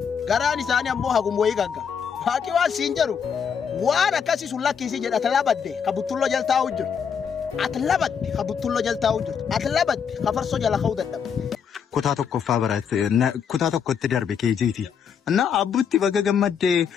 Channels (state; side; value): quieter; right; 7.1 dB